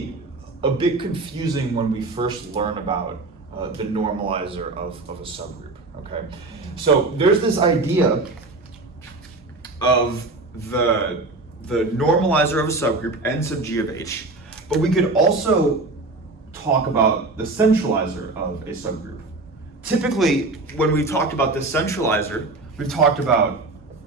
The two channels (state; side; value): quieter; left; 3.3 dB